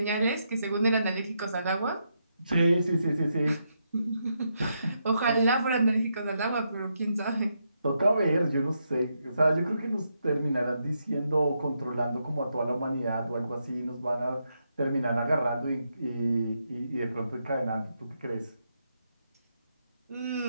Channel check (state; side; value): inverted; both; correlation -0.81